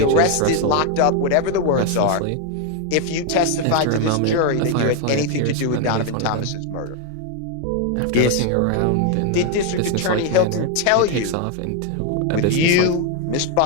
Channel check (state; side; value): different; both; correlation 0.01